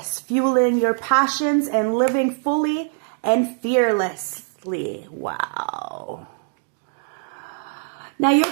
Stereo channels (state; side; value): silent; left; digital silence